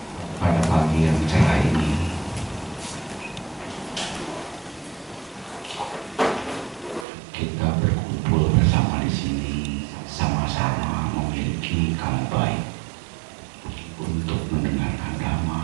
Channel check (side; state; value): left; drops out; at 7.1 s